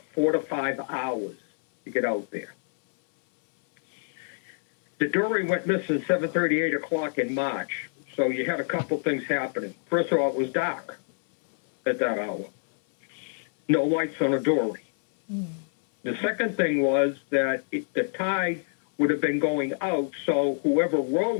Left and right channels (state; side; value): silent; right; 61 dB below the other